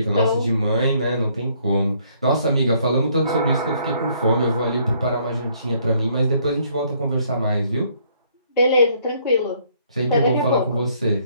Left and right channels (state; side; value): inverted; both; correlation -0.66